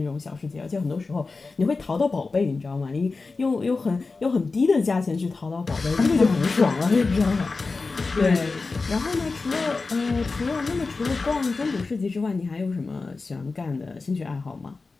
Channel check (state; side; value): quieter; right; 4.0 dB